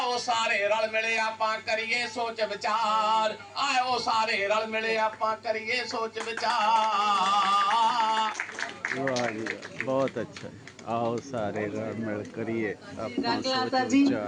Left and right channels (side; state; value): both; identical; correlation 1.00